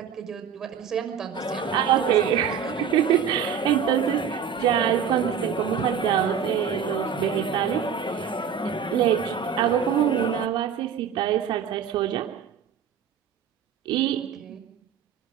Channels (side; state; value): left; quieter; 7.6 dB